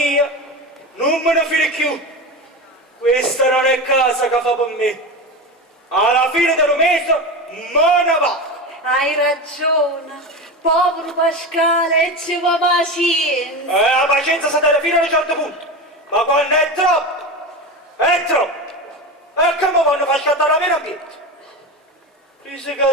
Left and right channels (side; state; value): both; normal; correlation 0.23